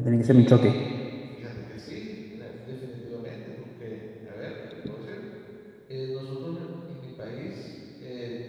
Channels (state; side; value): identical; both; correlation 1.00